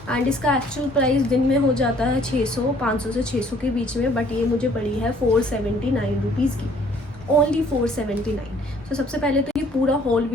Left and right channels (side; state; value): both; normal; correlation 0.59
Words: एंड इसका एक्चुअल प्राइस दिन में हो जाता है 500 से 600 के बीच में, बट ये मुझे पड़ी है 479 रुपीज़ की, ओनली 479। तो सबसे पहले तो ये पूरा होल